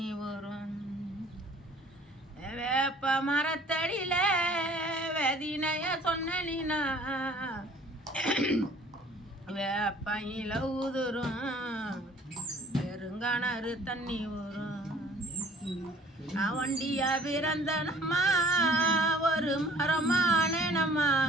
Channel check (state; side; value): normal; both; correlation 0.53